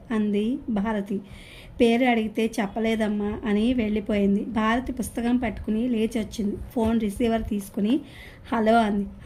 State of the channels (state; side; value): identical; both; correlation 1.00